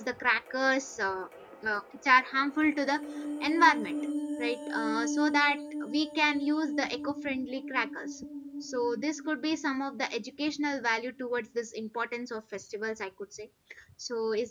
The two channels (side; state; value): both; identical; correlation 1.00